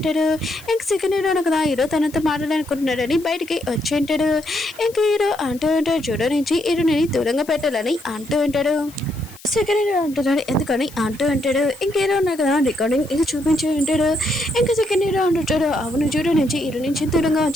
ఇంక సెకండ్ హీరో కదా హీరో తనతో మాట్లాడాలనుకుంటున్నాడని బయటికి వచ్చి ఉంటాడు. ఇంక హీరో అంటూ ఉంటాడు జూడో నుంచి హీరోని దూరంగా పెట్టాలని అంటూ ఉంటాడు. సెకండ్ హీరో అంటున్నాడు ఎందుకని అంటూ అంటాడు. ఇంకేదో ఉన్నారు కదా రికార్డింగ్ ఇది చూపించి ఉంటాడు. ఇంకా సెకండ్ హీరో అంటుంటాడు అవును జూడో నుంచి హీరో నుంచి దూరంగా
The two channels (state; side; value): noise; left; hiss, 21 dB below the sound